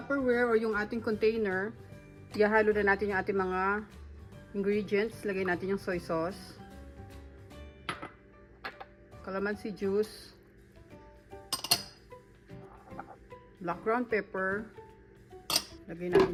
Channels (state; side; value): identical; both; correlation 1.00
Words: o yung ating container, ihahalo na natin yung ating mga ingredients. Lagay natin yung soy sauce, calamansi juice, black ground pepper, lagay